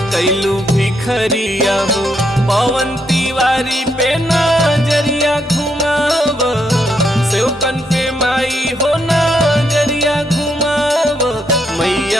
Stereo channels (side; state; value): both; normal; correlation 0.77